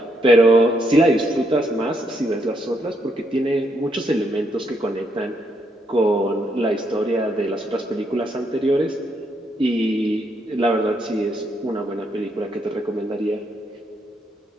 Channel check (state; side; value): normal; both; correlation 0.76